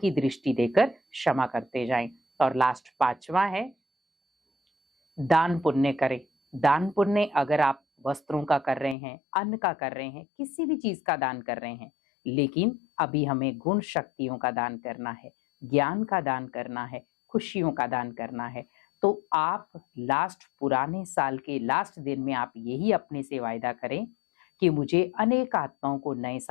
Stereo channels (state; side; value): drops out; right; at 9.0 s